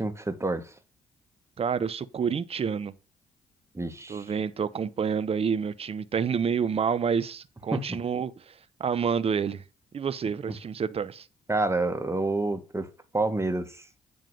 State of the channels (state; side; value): quieter; left; 4.8 dB